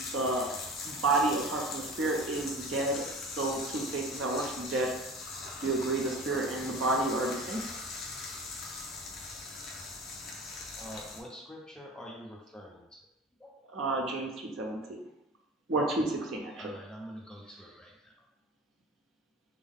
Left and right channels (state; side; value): normal; both; correlation 0.36